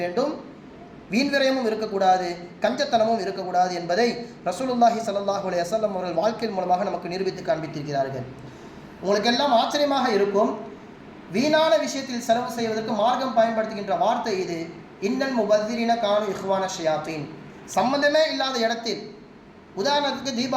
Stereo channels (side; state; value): both; identical; correlation 1.00